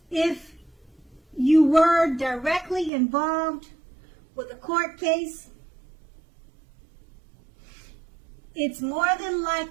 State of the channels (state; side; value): drops out; left; at 2.9 s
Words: if you were directly involved with a court case. It's more than